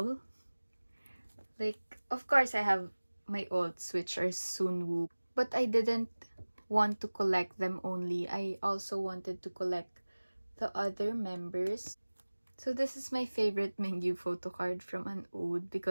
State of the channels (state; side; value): inverted; both; correlation -1.00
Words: Like, of course I have my alts which are Sunwoo, but I didn't want to collect them only. I also wanted to collect the other members. So this is my favorite Mingyu photo card from an ode